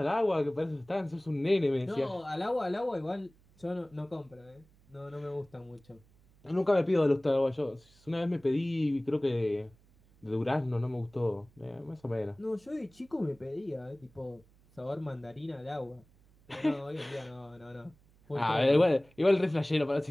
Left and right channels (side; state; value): right; noise; hum, 29 dB below the sound